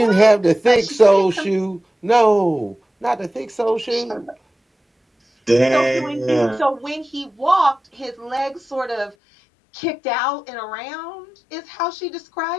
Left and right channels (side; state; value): right; drops out; at 9.2 s